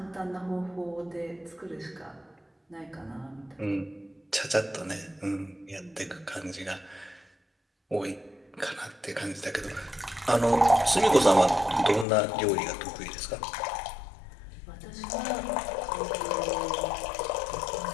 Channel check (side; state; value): right; drops out; at 12.1 s